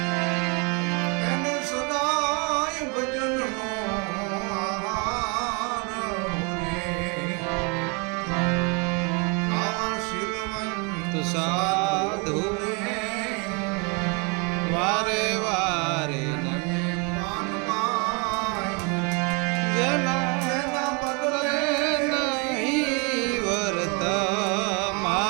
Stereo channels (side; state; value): left; quieter; 32.7 dB